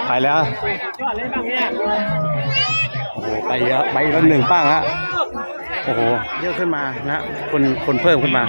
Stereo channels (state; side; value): inverted; both; correlation -1.00